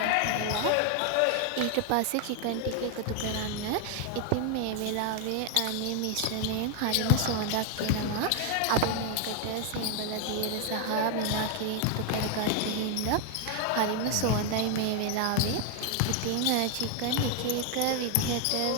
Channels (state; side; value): different; both; correlation 0.01